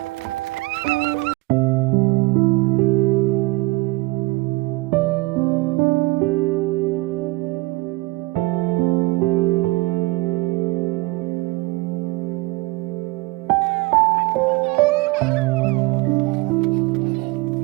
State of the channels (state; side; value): quieter; left; 23.1 dB